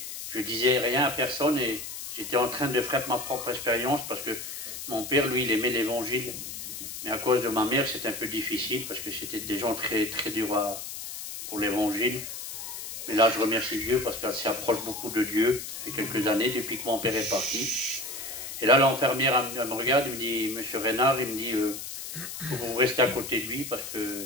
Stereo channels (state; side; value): noise; left; hiss, 8 dB below the sound